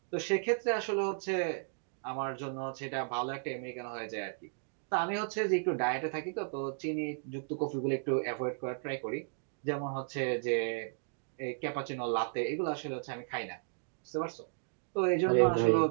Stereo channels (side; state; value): left; silent; digital silence